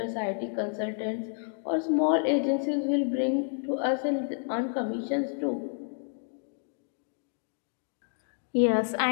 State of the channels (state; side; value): silent; right; digital silence